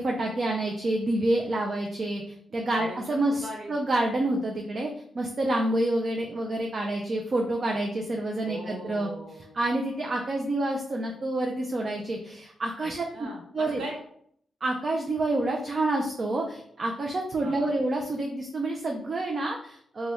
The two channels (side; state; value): both; normal; correlation 0.86